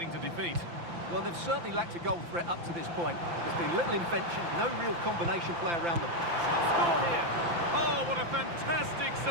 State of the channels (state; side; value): late; left; 5.9 ms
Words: to defeat. Well, they've certainly lacked a goal threat up to this point. There's been little invention, no real combination play around them. Shot score here. Oh, what a fantastic